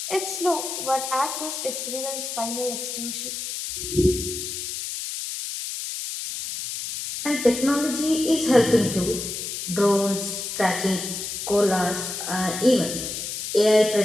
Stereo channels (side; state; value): left; noise; hiss, 5 dB below the sound